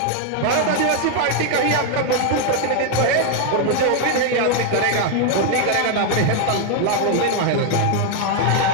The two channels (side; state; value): both; different; correlation 0.00